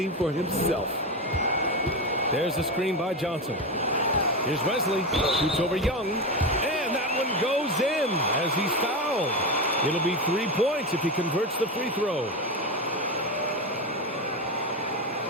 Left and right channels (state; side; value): normal; both; correlation 0.17